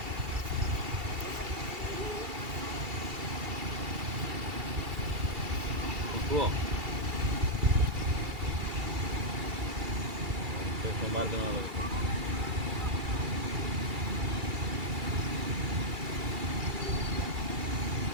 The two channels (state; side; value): late; left; 2.3 ms